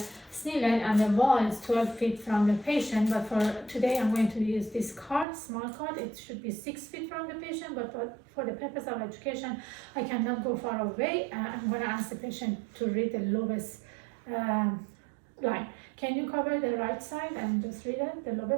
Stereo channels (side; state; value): left; drops out; at 5.2 s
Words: Snellen, and the wall is 12 feet from the patient. But for today, I'm going to use this card, small card. It should be 6 feet from the patient, but for the purpose of education, I cannot go far away. I'm going to ask the patient to read the lowest line. Can you cover the right side and just read it, the